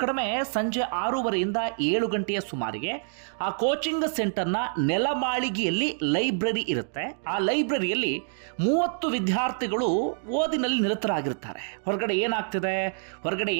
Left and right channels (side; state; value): left; silent; digital silence